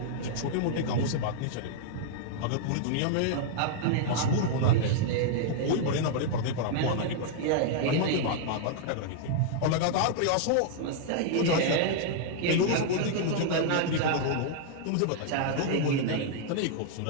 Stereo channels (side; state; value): both; different; correlation -0.01